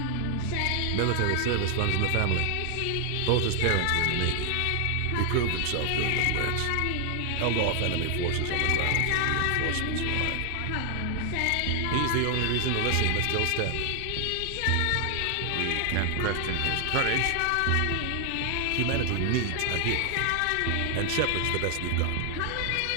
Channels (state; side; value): different; both; correlation 0.00